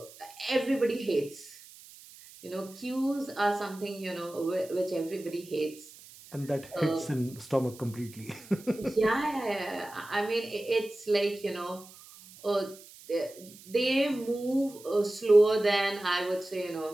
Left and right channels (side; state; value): right; noise; hiss, 20 dB below the sound